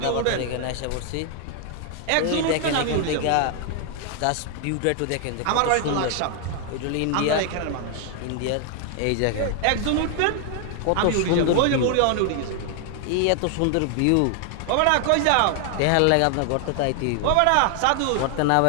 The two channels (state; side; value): different; both; correlation 0.00